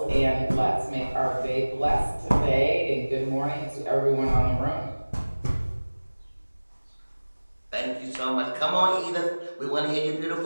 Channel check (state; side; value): inverted; both; correlation -1.00